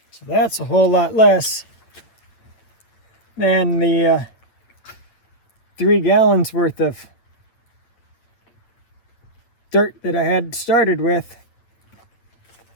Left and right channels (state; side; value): late; right; 8.9 ms